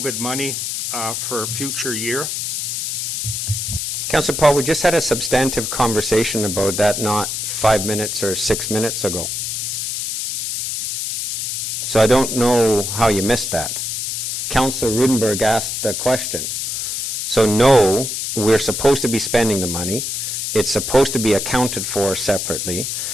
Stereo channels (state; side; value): noise; left; hiss, 3 dB below the sound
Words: money for a future year? Councillor Paul, we just had a substantive conversation about that not 5 minutes or 6 minutes ago. So I don't know how you missed that. Councillor Rudenberg asked the question. So no, we're supposed to be spending the money. It's supposed to be accounted for separately.